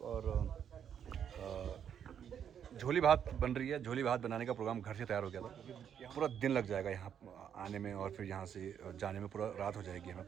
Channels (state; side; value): quieter; left; 8.6 dB